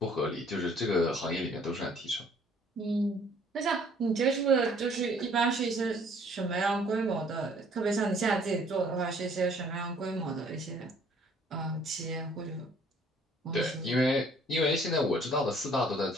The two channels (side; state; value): both; normal; correlation 0.58